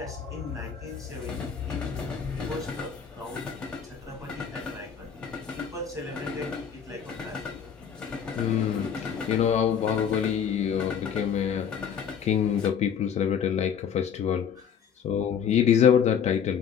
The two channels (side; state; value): right; quieter; 7.7 dB